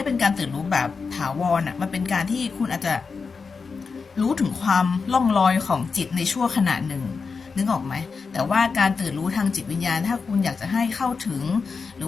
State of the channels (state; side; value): quieter; right; 5.0 dB